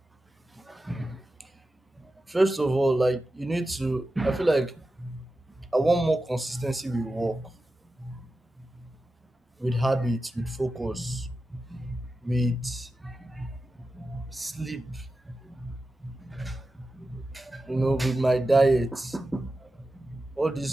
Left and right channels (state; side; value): normal; both; correlation 0.92